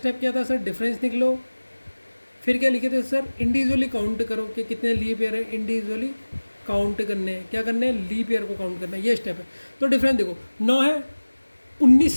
क्या था सर, डिफरेंस निकलो, फिर क्या लिखे थे सर, इंडिविजुअली काउंट करो कि कितने लीप ईयर है, इंडिविजुअली काउंट करने हैं, क्या करने हैं, लीप ईयर को काउंट करना है, ये स्टेप है। तो डिफरेंस देखो, 9 है, 19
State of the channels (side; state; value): both; inverted; correlation -1.00